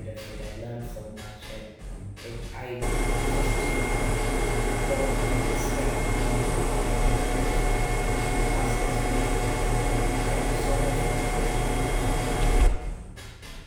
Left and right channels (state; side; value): identical; both; correlation 1.00